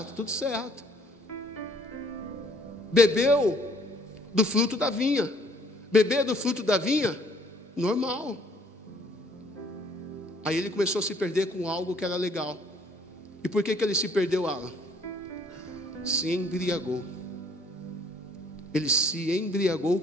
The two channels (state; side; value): normal; both; correlation 0.61